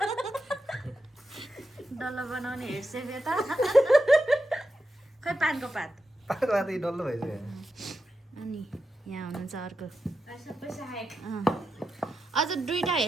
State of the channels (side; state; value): both; normal; correlation 0.88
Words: डल्लो बनाउने हेड सेफ यता खै पानको पात पातको पात डल्लो भइसक्यो अनि यहाँ हुनुहुन्छ अर्को अझ दुईटा